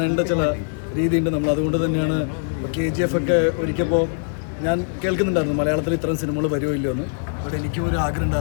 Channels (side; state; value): right; silent; digital silence